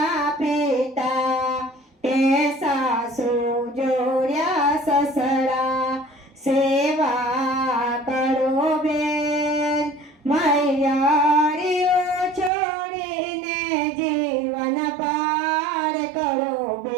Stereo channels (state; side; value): drops out; left; at 12.5 s